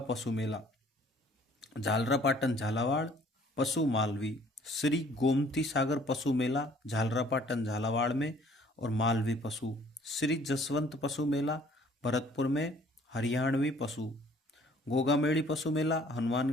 पशु मेला झालरापाटन झालावाड़ पशु मालवी। श्री गोमती सागर पशु मेला झालरापाटन झालावाड़ में और मालवी पशु। श्री जसवंत पशु मेला भरतपुर में हरियाणवी पशु। गोगामेड़ी पशु मेला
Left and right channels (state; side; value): normal; both; correlation 0.57